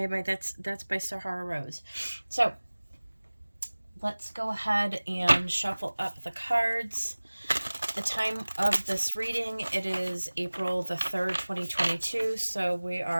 that's by Sahara Rose. So let's go ahead and shuffle up the cards. The time of this reading, it is April the 3rd, 2022. So we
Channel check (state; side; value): inverted; both; correlation -1.00